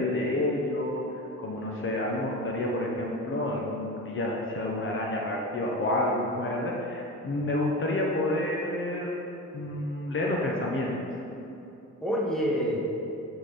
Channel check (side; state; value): both; normal; correlation 0.28